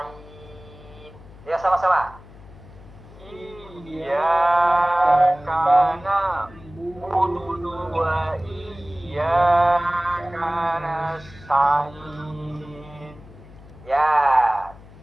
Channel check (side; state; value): left; noise; hum, 20 dB below the sound